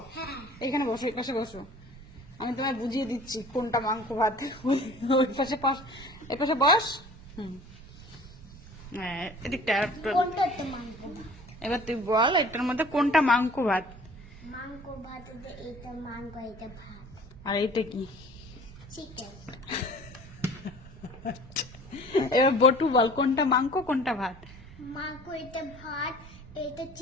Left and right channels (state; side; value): normal; both; correlation 0.47